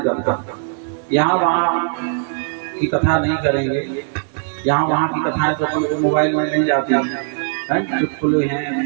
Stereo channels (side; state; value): left; silent; digital silence